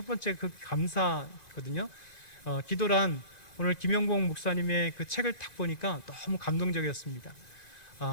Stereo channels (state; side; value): late; right; 1.9 ms